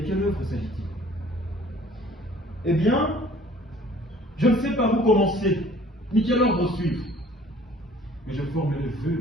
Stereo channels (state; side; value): normal; both; correlation 0.53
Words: œuvre s'agit-il? Eh bien, je ne sais par où commencer, ni quel ordre suivre. Mais je forme le